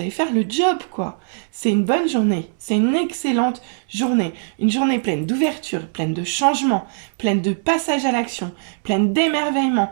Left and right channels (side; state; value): left; silent; digital silence